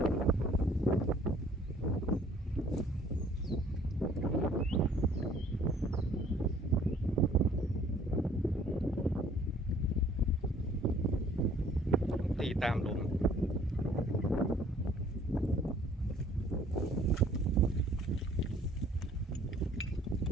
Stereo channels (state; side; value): normal; both; correlation 0.57